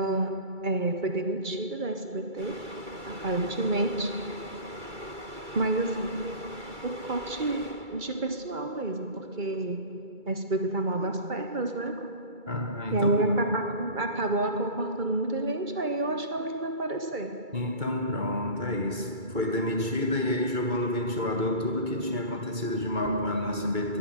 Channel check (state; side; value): late; left; 2.3 ms